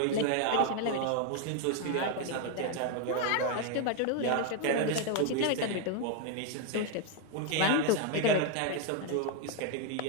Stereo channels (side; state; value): both; different; correlation 0.00